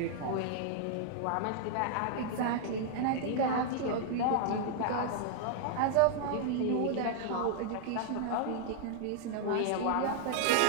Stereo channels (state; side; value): different; both; correlation 0.00